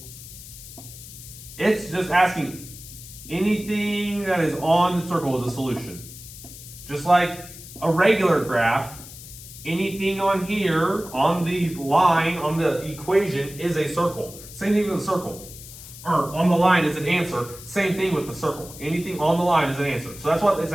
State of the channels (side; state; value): left; noise; hiss, 15 dB below the sound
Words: it's just asking anything that is on the circle is a solution. Just like a regular graph, anything on here, on the line, on the equation, is a circle. Same thing with a circle. Or on the line is an answer. Same thing with the circle. Anything on the line is an answer. So that's what it's